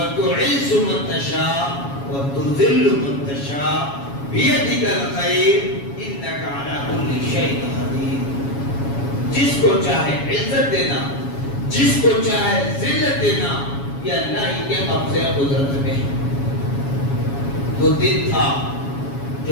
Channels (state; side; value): late; right; 7.2 ms